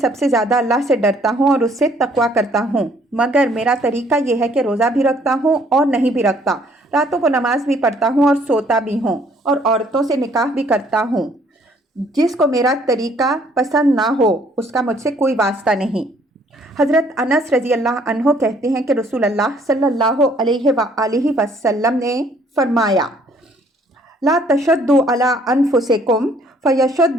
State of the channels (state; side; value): normal; both; correlation 0.62